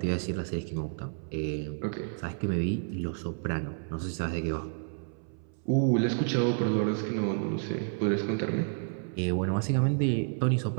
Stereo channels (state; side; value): silent; left; 58 dB below the other